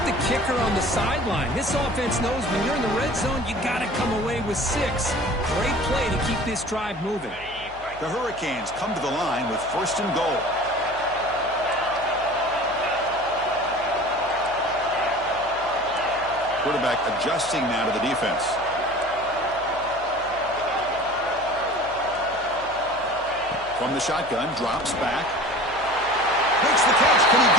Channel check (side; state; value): left; noise; hum, 20 dB below the sound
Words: the kicker on the sideline. This offense knows when you're in the red zone, you got to come away with 6. Great play to keep this drive moving. The Hurricanes come to the line with first and goal. Quarterback adjusting now to the defense. From the shotgun, drops back. Makes the catch. Can he